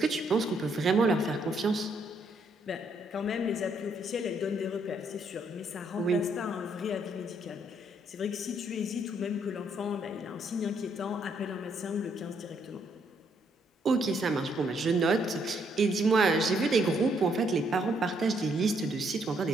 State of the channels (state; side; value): normal; both; correlation 0.71